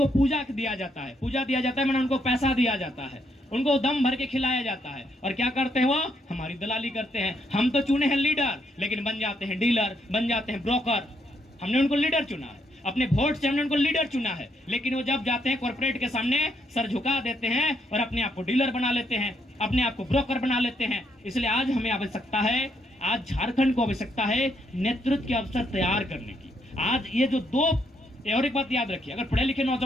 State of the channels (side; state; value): both; normal; correlation 0.74